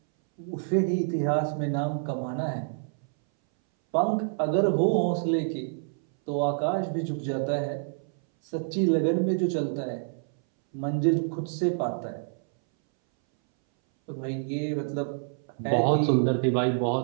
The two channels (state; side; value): silent; left; 60 dB below the other